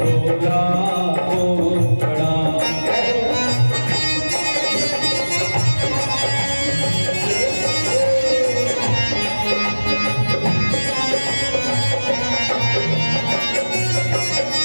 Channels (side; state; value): both; inverted; correlation -1.00